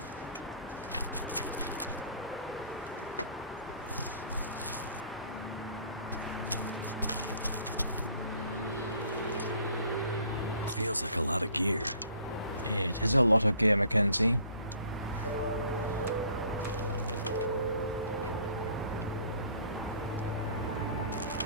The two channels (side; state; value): both; inverted; correlation -0.54